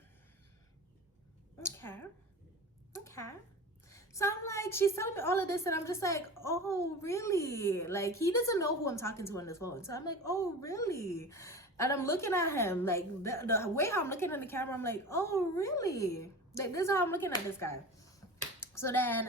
Okay. So I'm like, she's telling me all of this, and I'm just like, oh, really? Like, he doesn't know who I'm talking to on this phone. So I'm like, oh, really? And I'm looking at him, like, the way how I'm looking at the camera, I'm like, oh, really? Like, this is how I'm looking at this guy. So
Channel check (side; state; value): both; normal; correlation 0.33